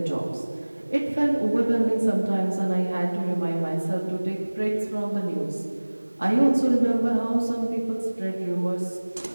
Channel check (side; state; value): both; inverted; correlation -1.00